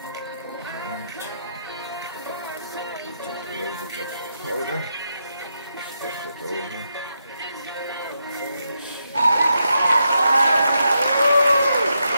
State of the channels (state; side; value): inverted; both; correlation -0.83